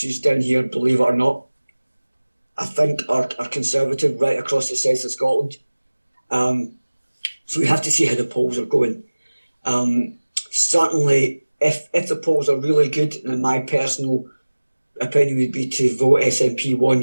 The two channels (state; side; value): inverted; both; correlation -1.00